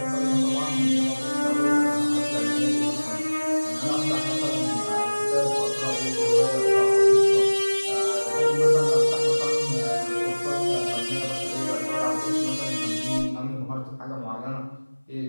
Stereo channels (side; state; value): both; inverted; correlation -1.00